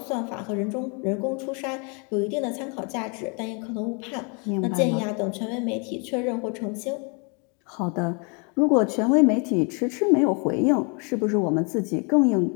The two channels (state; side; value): quieter; right; 34.7 dB